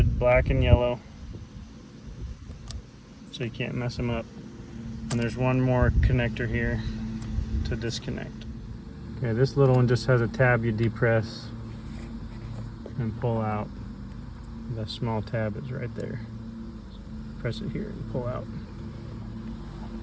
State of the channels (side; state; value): both; identical; correlation 1.00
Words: black and yellow, so you can't mess them up. And there's one more connector here to disconnect. Okay, this little one just has a tab you depress and pull out. The small tab is right there. Press it here and pull out.